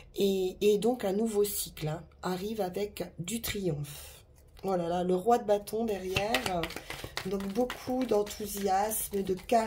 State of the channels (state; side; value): identical; both; correlation 1.00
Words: Et donc un nouveau cycle, hein, arrive avec du triomphe. Voilà, là, le roi de bâton derrière. Donc beaucoup d'enthousiasme, de